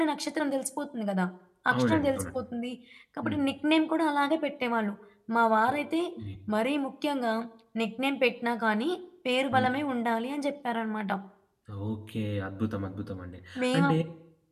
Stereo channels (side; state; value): both; identical; correlation 1.00